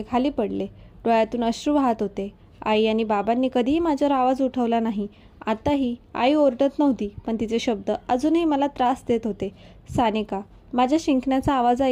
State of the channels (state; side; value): identical; both; correlation 1.00